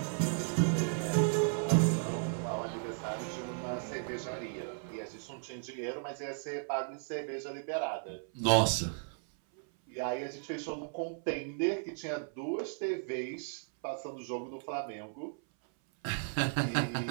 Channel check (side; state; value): left; silent; 54 dB below the other